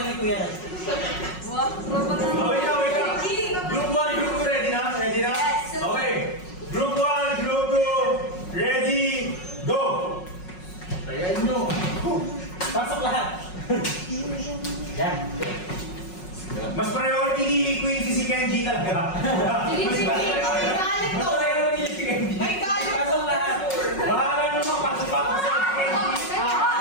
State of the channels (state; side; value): late; right; 5.5 ms